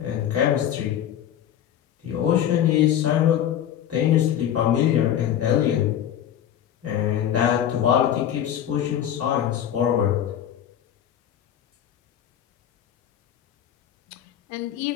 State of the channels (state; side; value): quieter; right; 10.4 dB